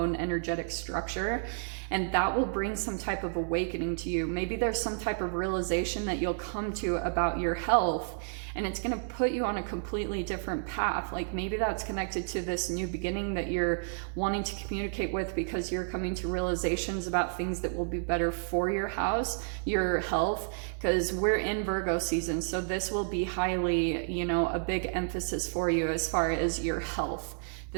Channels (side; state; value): left; silent; digital silence